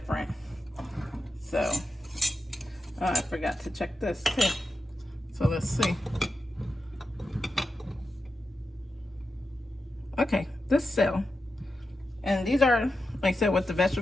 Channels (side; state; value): both; normal; correlation 0.90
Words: So I forgot to check this too. So let's see. Okay, this cell. And these are, like I said, with the